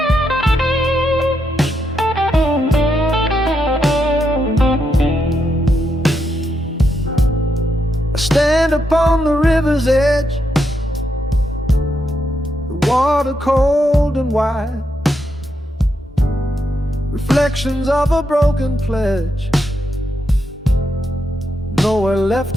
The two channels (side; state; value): both; normal; correlation 0.81